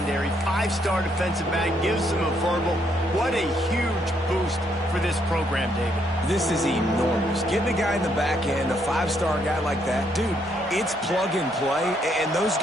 5-star defensive back gives them a verbal. What a huge boost for this program, David. This is enormous. Getting a guy in the back end, a 5-star guy like that, dude, it's plug and play, and those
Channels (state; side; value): normal; both; correlation 0.73